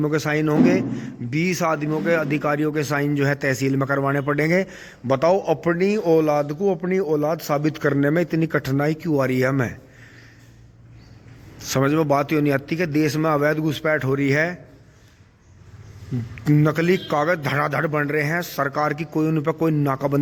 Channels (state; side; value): identical; both; correlation 1.00